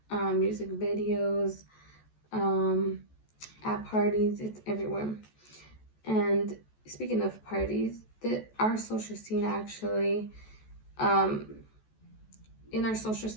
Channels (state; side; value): late; right; 14 ms